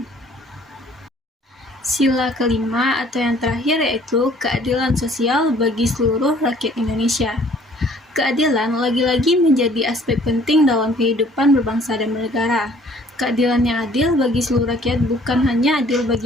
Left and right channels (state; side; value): normal; both; correlation 0.57